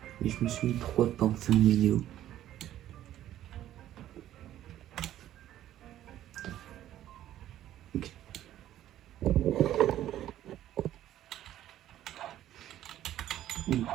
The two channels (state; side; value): quieter; left; 12.5 dB